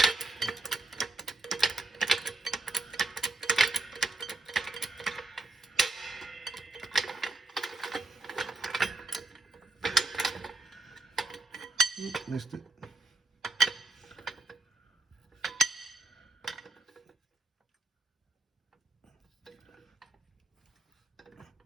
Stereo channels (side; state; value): left; quieter; 3.0 dB